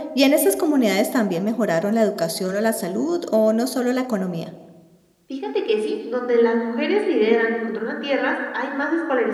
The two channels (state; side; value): identical; both; correlation 1.00